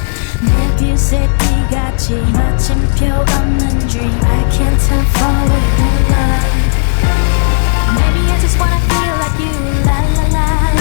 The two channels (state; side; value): silent; right; digital silence